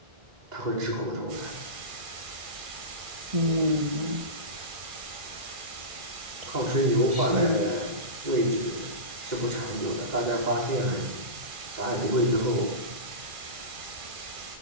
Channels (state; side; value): late; left; 2.4 ms